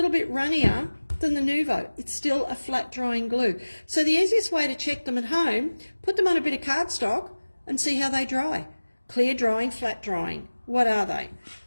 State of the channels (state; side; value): inverted; both; correlation -1.00